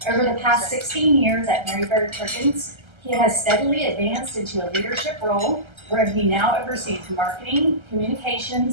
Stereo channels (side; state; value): left; late; 1.3 ms